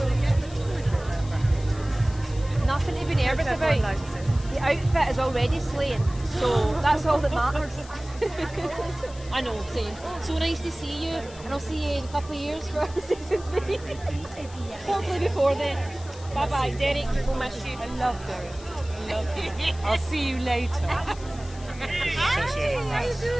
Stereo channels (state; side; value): noise; left; hiss, 20 dB below the sound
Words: getting forward with that. Nothing to be nervous Everyone about. likes it. The outfit is already slaying, so that's all that matters. I know, same. So nice to see you, and I'll see you in a couple of years for season 3. Hopefully before then. Bye bye, Derek. We'll miss you. I love Derek. I love you. I'll see you later. Hi, how you